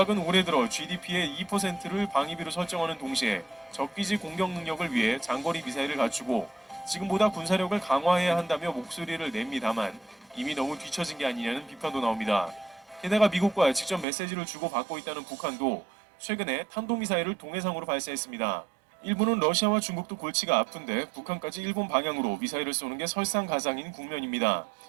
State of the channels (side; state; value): left; drops out; at 14.1 s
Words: 올해 들어 GDP의 2%를 방위비로 설정하는 동시에 적기지 공격 능력을 위해 장거리 미사일을 갖추고 지금보다 군사력을 강화해야 한다며 목소리를 냅니다만 이미 너무 뒤처진 게 아니냐는 비판도 나옵니다. 게다가 미국과 직접 메시지를 주고받고 있다는 북한도 최근에 탄도미사일을 동해상으로 발사했습니다. 일본은 러시아와 중국도 골치가 아픈데 북한까지 일본 방향으로 미사일을 쏘는 게 설상가상인 국면입니다.